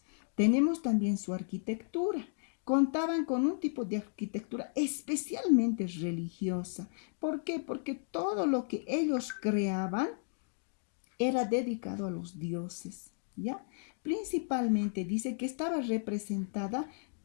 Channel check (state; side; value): silent; right; digital silence